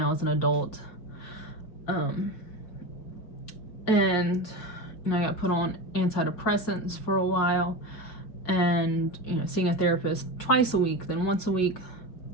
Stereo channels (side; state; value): right; late; 5.4 ms